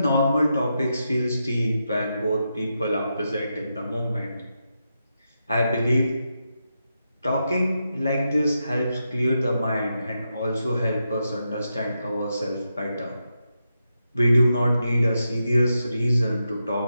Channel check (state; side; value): inverted; both; correlation -0.86